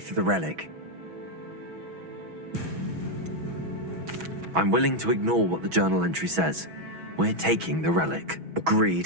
the relic. I'm willing to ignore what the journal entry says. We're taking the relic.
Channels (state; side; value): late; left; 6.1 ms